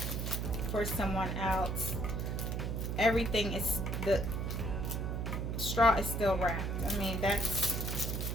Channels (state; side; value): noise; right; hum, 1 dB below the sound